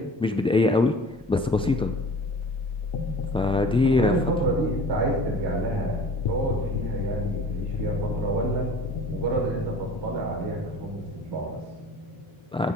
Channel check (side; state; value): both; normal; correlation 0.44